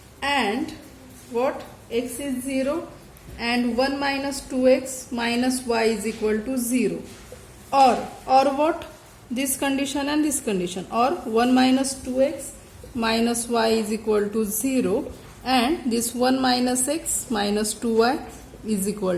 and what? X is 0 and 1 minus 2x minus y is equal to 0, or what? This condition and this condition, or 1 minus 2x minus y is equal to 0, and this 1 minus x minus 2y is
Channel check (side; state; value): both; identical; correlation 1.00